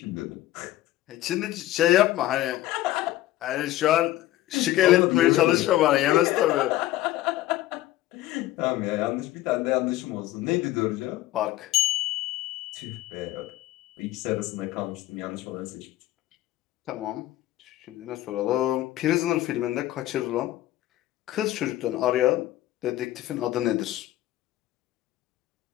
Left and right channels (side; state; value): right; quieter; 15.2 dB